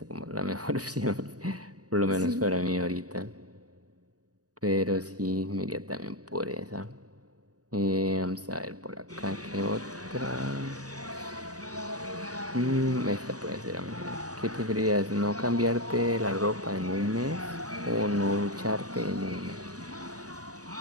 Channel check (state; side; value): late; left; 0.67 ms